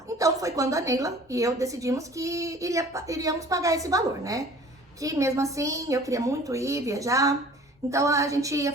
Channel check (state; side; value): normal; both; correlation 0.48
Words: Então, foi quando a Neila e eu decidimos que iríamos pagar esse valor, né? Que mesmo assim, eu queria muito ir viajar, então a gente ia